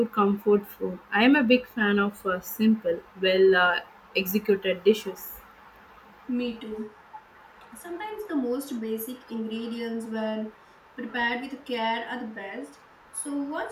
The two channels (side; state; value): both; identical; correlation 1.00